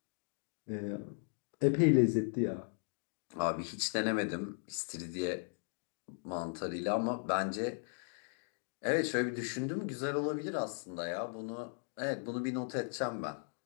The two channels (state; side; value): silent; right; 53 dB below the other